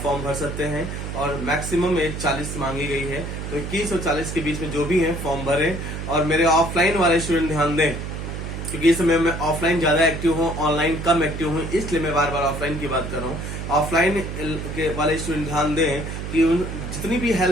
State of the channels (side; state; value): right; noise; hum, 6 dB below the sound